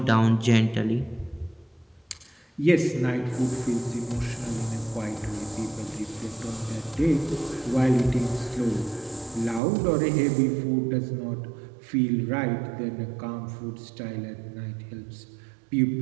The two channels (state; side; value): drops out; left; at 9.6 s